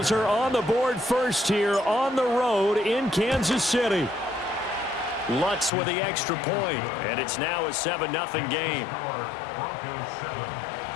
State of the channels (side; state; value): right; drops out; at 5.7 s